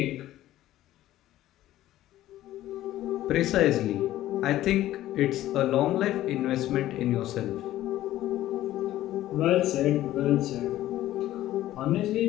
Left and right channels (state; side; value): quieter; right; 14.3 dB